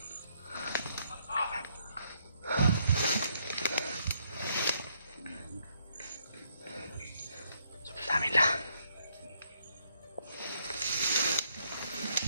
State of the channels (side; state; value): both; inverted; correlation -0.72